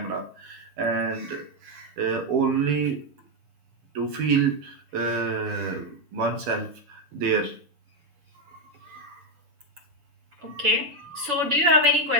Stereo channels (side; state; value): left; late; 6.9 ms